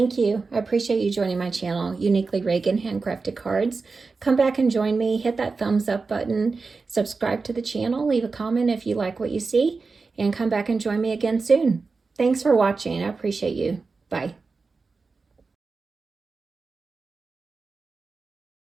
you. I appreciate you joining my channel, Uniquely Reagan Handcrafted Cards. Come back and join me. Hit that thumbs up button. Subscribe to the channel. Leave a comment if you like what you see. And come back and join me again soon. Thanks for watching. I appreciate you. Bye.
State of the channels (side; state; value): left; quieter; 4.3 dB